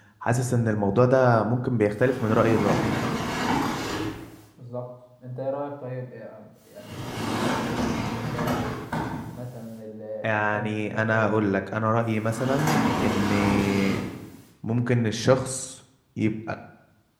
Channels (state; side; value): identical; both; correlation 1.00